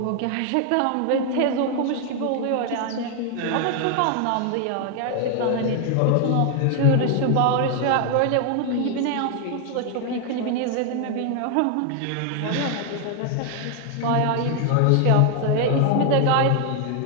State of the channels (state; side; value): different; both; correlation 0.00